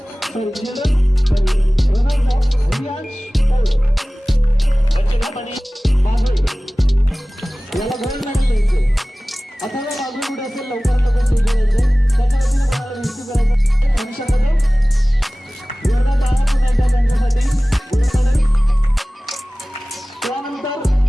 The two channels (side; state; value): both; normal; correlation 0.98